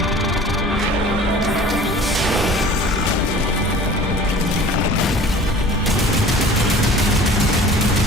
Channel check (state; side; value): normal; both; correlation 0.45